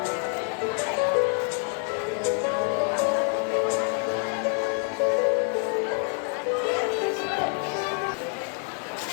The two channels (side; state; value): right; quieter; 36.9 dB